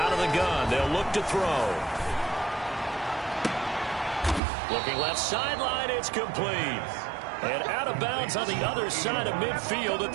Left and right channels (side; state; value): left; drops out; at 4.4 s